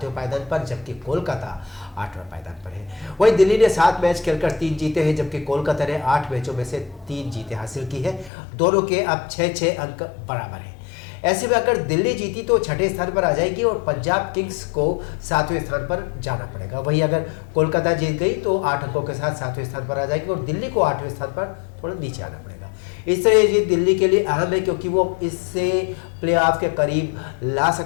पायदान पर, जबकि कोलकाता 8वें पायदान पर है। वहीं दिल्ली ने 7 मैच खेलकर 3 जीते हैं, जबकि कोलकाता ने 8 मैचों में से 3 जीतें हासिल की है। दोनों के अब 6-6 अंक बराबर हैं। ऐसे में अगर दिल्ली जीती तो 6ठे स्थान पर आ जाएगी और पंजाब किंग्स को 7वें स्थान पर जाना पड़ेगा। वहीं अगर कोलकाता जीत गई तो 8 अंकों के साथ 7वें स्थान पर आ जाएगी और दिल्ली को 8वें स्थान पर थोड़ा नीचे आना पड़ेगा। इस तरह ये जीत दिल्ली के लिए अहम है क्योंकि वो इससे प्लेऑफ के करीब ला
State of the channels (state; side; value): drops out; right; at 8.3 s